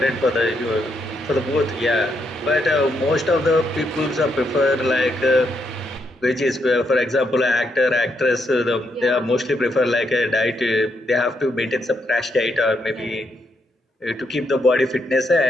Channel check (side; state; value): both; normal; correlation 0.78